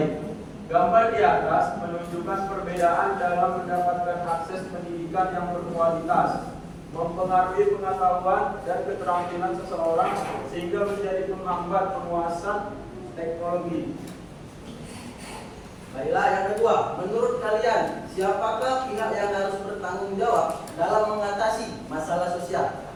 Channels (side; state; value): both; identical; correlation 1.00